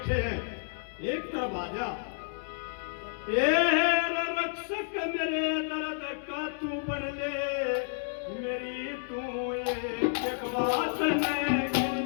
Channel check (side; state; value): right; silent; 57 dB below the other